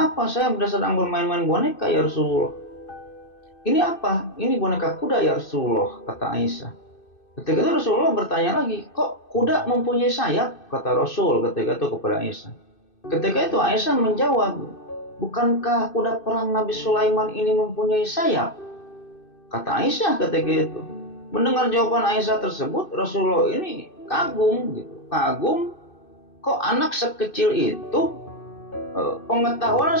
apa?" "Saya sedang bermain-main boneka ya Rasulullah." "Ini apa?" "Ini boneka kuda ya Rasulullah," kata Aisyah. Ketika itu Rasulullah bertanya lagi, "Kok kuda mempunyai sayap?" kata Rasul ketika itu kepada Aisyah. Ketika itu Aisyah menjawab, "Bukankah kuda perang Nabi Sulaiman ini mempunyai sayap?" kata Aisyah ketika itu. Mendengar jawaban Aisyah tersebut, Rasulullah ini kagum gitu. Kagum, kok anak sekecil itu pengetahuan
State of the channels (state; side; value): late; right; 2.6 ms